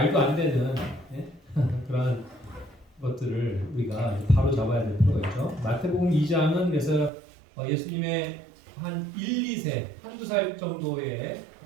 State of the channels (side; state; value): left; drops out; at 7.1 s